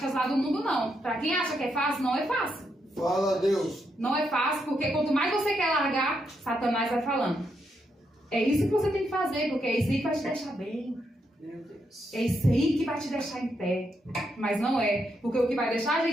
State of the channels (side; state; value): both; normal; correlation 0.80